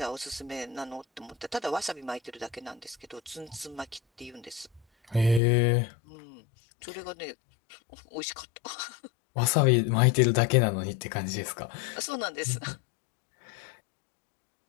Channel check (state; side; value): drops out; right; at 5.4 s